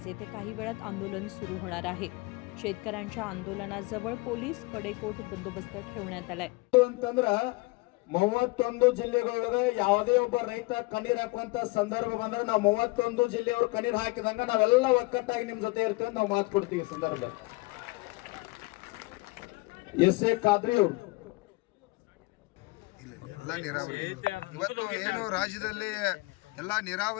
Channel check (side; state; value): right; quieter; 24.5 dB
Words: येथे काही वेळात आंदोलन सुरू होणार आहे. शेतकऱ्यांच्या आंदोलनाजवळ पोलीस कडेकोट बंदोबस्त ठेवण्यात आलाय. 31 ಜಿಲ್ಲೆಗಳೊಳಗೆ ಯಾವುದೇ ಒಬ್ಬ ರೈತ ಕಣ್ಣೀರ್ ಹಾಕುವಂತ ಸಂದರ್ಭ ಬಂದಾಗ ನಾವು 31 ಜಿಲ್ಲೆಯವರು ಕಣ್ಣೀರ್ ಹಾಕಿದಂಗ ನಾವೆಲ್ಲ ಒಕ್ಕಟ್ಟಾಗಿ ನಿಮ್ ಜೊತೆ ಇರ್ತೀವಿ ನಾವು ಮಾತು ಕೊಡ್ತೀವಿ. ಸಂದರ್ಭ ಎಸ್.ಎ. ಖಾದ್ರಿ ಅವರು ಎಲ್ಲ ನೀರಾವರಿ ಇವತ್ತು ಏನು ರಾಜ್ಯದಲ್ಲಿ ಎಲ್ಲ